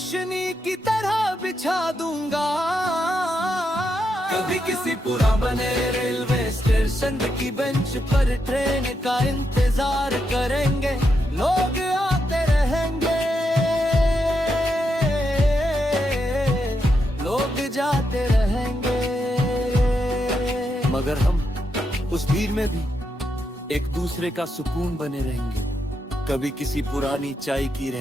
की तरह बिछा दूंगा। कभी किसी पुराने रेलवे स्टेशन की बेंच पर ट्रेन का इंतजार करेंगे, लोग आते रहेंगे, लोग जाते रहेंगे, मगर हम उस भीड़ में भी एक दूसरे का सुकून बने रहेंगे। कभी किसी पुरानी चाय की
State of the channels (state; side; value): normal; both; correlation 0.83